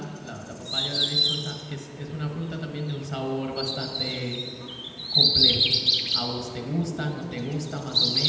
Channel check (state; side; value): identical; both; correlation 1.00